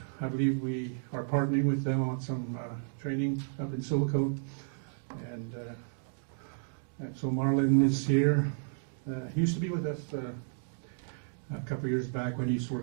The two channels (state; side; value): silent; left; digital silence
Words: I believe we are partnering with them on some training up in Silicon. And so Marlon is here. He used to be with us a couple of years back when he used to